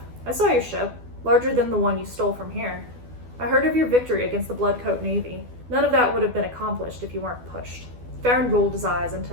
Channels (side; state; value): left; late; 12 ms